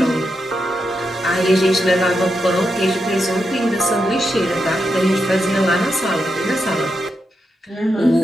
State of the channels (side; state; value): both; normal; correlation 0.85